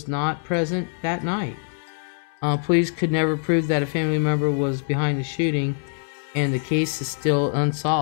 not present that night. Police could never prove that a family member was behind the shooting, and the case is still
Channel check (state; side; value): silent; right; 63 dB below the other